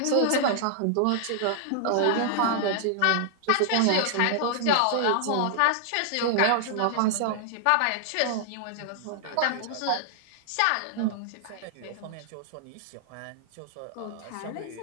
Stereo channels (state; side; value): different; both; correlation -0.01